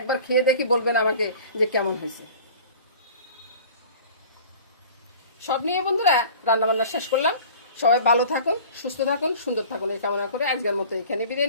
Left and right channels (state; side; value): inverted; both; correlation -0.44